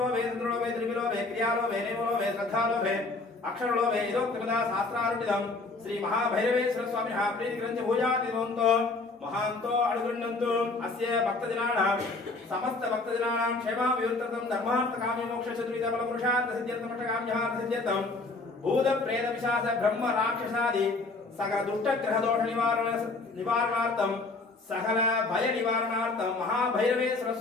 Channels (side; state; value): right; quieter; 3.5 dB